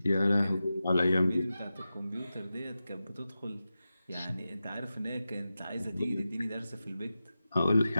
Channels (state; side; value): inverted; both; correlation -0.93